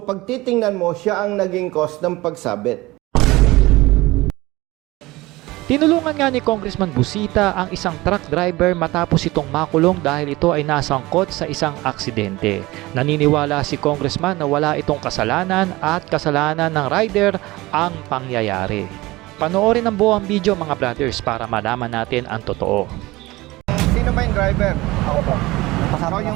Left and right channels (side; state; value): left; quieter; 20.1 dB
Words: titingnan mo, siya ang naging cause ng pagsabit. Tinulungan nga ni Congressman Busita ang isang truck driver matapos itong makulong dahil ito ay nasangkot sa isang aksidente. Naniniwala si Congressman na wala itong kasalanan at kasalanan ng rider ang pangyayari. Panoorin ang buong video mga brothers para malaman natin ang totoo. Sino ba yung driver? Ako po. Ikaw